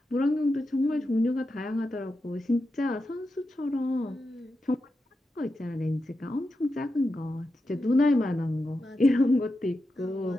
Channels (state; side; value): normal; both; correlation 0.89